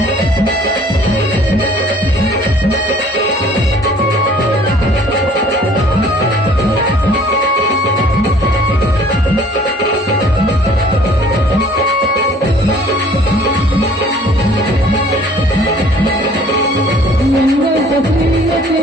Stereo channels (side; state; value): both; normal; correlation 0.54